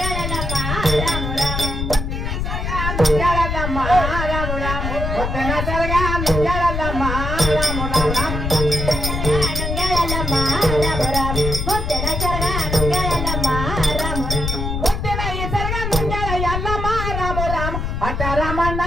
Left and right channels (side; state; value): left; noise; rumble, 2 dB below the sound